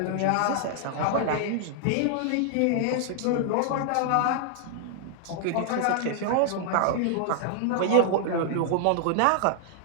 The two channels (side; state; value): both; different; correlation 0.00